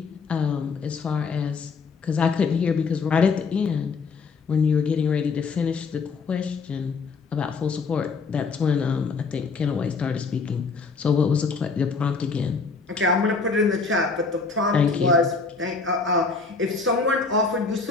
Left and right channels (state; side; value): quieter; right; 4.6 dB